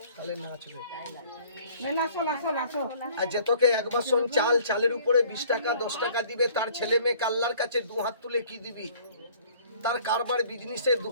তাহলে নাচবে। আর যে তোকে 1 বাসন চাল, চালের উপরে 20 টাকা 10 টাকা দিবে, তার ছেলে মেয়ে আল্লাহর কাছে 2 হাত তুলে কি দিবি? তার কারবার বিজনেসের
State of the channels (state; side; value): inverted; both; correlation -0.54